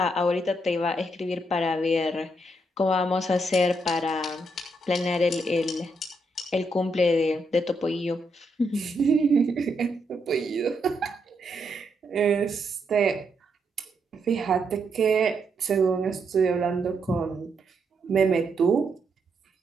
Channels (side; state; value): both; normal; correlation 0.78